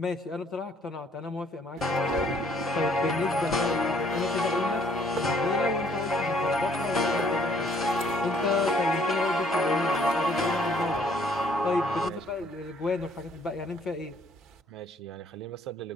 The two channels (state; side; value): normal; both; correlation 0.63